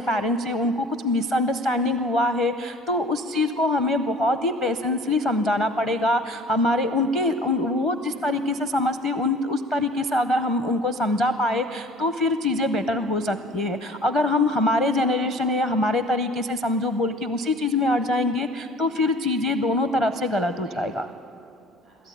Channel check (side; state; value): both; normal; correlation 0.46